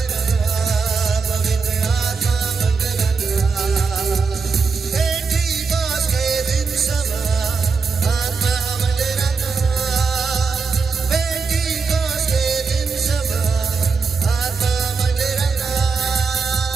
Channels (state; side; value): quieter; left; 5.0 dB